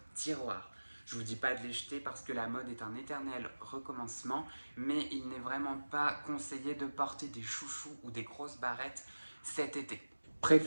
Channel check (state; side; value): inverted; both; correlation -1.00